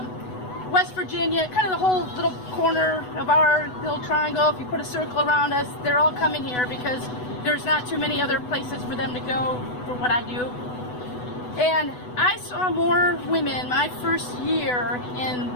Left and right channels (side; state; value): right; late; 8.1 ms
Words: West Virginia, kind of the whole little corner of our little triangle. If you put a circle around us, they're all coming here because there's not too many other places for them to go for what I do. And I saw more women my first year in